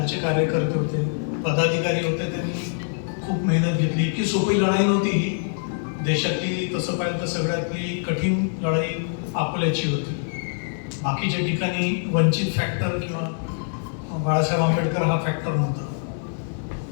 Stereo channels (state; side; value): silent; right; digital silence